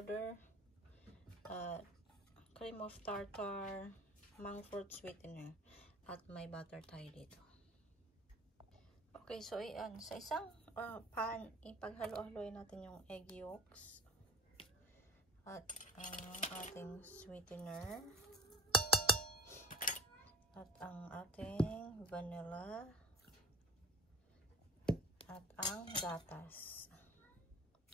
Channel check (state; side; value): normal; both; correlation 0.43